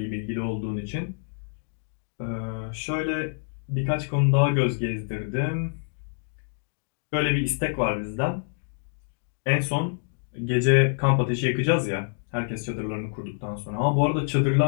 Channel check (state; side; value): silent; right; digital silence